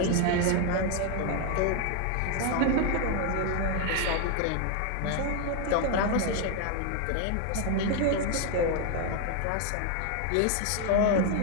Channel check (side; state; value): both; different; correlation 0.01